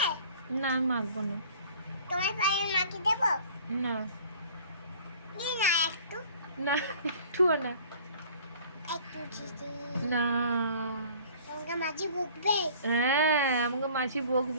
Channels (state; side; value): inverted; both; correlation -0.49